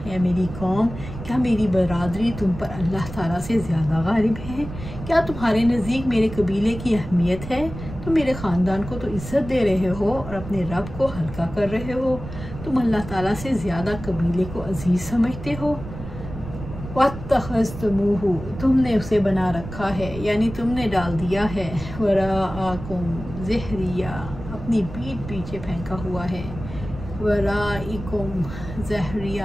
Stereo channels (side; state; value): right; noise; rumble, 11 dB below the sound